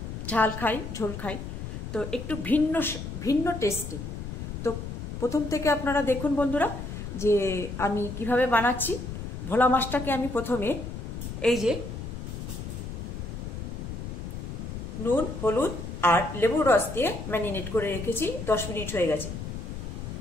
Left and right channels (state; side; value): noise; left; rumble, 7 dB below the sound